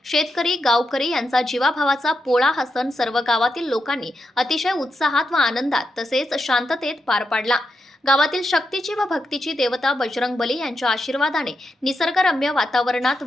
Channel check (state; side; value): normal; both; correlation 0.85